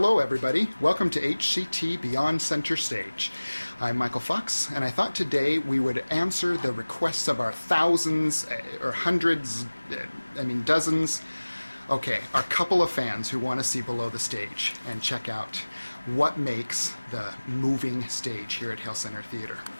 everybody. Welcome to HCT Beyond Center Stage. I'm Michael Fox, and I thought today we would answer the requests of our thousands or hundreds, dozens, our couple of fans who want to see below the stage and check out what makes the moving stage here at Hale Center Theater.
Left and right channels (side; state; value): both; inverted; correlation -1.00